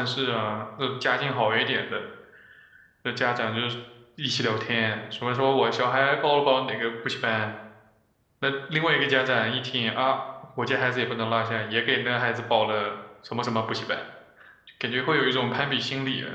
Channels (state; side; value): identical; both; correlation 1.00